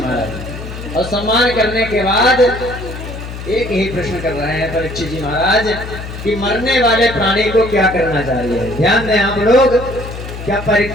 और सम्मान करने के बाद एक ही प्रश्न कर रहे हैं परीक्षित जी महाराज कि मरने वाले प्राणी को क्या करना चाहिए। ध्यान दें आप लोग, क्या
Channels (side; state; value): left; noise; hum, 10 dB below the sound